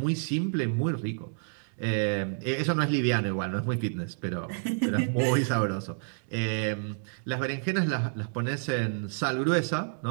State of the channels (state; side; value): silent; left; digital silence